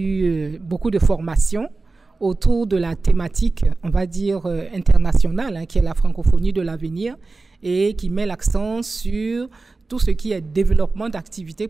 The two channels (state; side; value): quieter; left; 3.7 dB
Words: beaucoup de formations autour de la thématique, on va dire, internationale, qui est la francophonie de l'avenir et qui met l'accent sur tout ce qui est développement d'activités